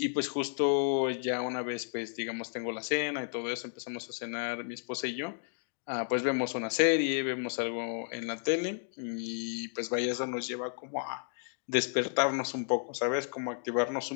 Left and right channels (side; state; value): right; silent; 56 dB below the other